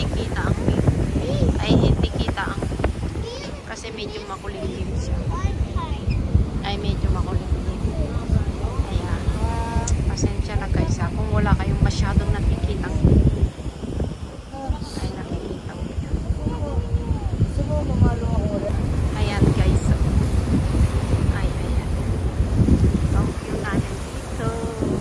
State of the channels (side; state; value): both; identical; correlation 1.00